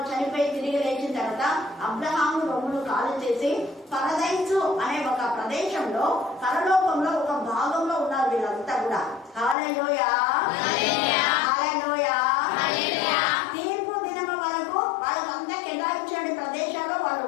చనిపోయి తిరిగి లేచిన తర్వాత అబ్రహాము రొమ్ములు కాలు చేసి పరదైసు అనే ఒక ప్రదేశంలో పరలోకంలో ఒక భాగంలో ఉన్నారు వీళ్ళంతా కూడా. హల్లెలూయా, హల్లెలూయా. తీర్పు దినము వరకు వాళ్ళకంతా కేటాయించిన ప్రదేశాల్లో వాళ్ళు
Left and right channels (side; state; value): right; drops out; at 9.6 s